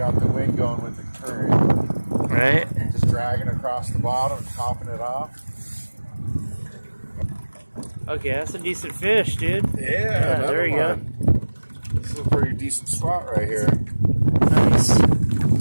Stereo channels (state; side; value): inverted; both; correlation -1.00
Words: the wind going with the current. Right? Just dragging across the bottom and topping it off. Okay, that's a decent fish, dude. Yeah, there you go. This is a pretty decent spot right here. Nice. I